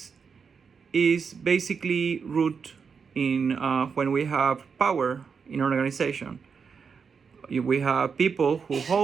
is basically root in when we have power in an organization. We have people who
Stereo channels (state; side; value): quieter; left; 5.9 dB